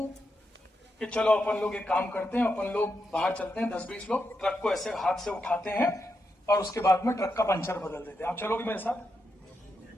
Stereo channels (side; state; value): both; normal; correlation 0.85